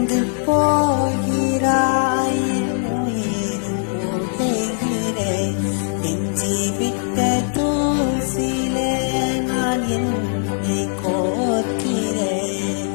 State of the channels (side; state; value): right; silent; 65 dB below the other